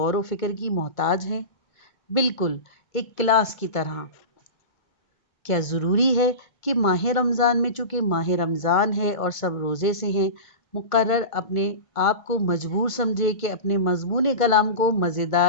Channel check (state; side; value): late; right; 1.5 ms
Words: و فکر کی محتاج ہیں؟ بالکل ایک کلاس کی طرح۔ کیا ضروری ہے کہ ماہ رمضان میں چونکہ ماہ رمضان ہے اور سب روزے سے ہیں، مقرر اپنے آپ کو مجبور سمجھے کہ اپنے مضمون کلام کو